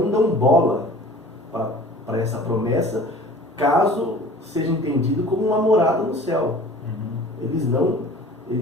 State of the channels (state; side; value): normal; both; correlation 0.45